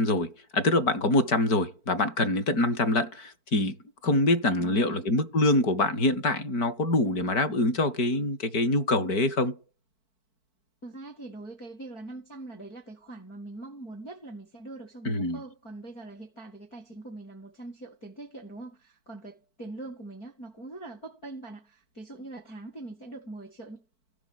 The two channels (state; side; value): late; right; 4.5 ms